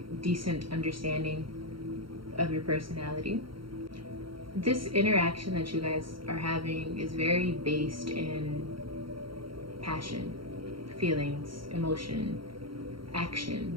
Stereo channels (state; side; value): late; left; 0.73 ms